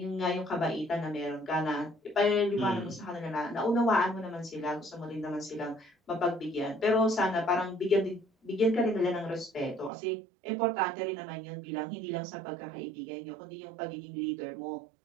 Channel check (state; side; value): drops out; left; at 9.9 s